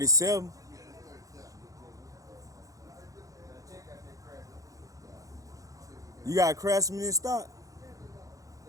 Yeah, that's 37. You got a Craftsman in stock? No,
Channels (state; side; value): late; left; 0.16 ms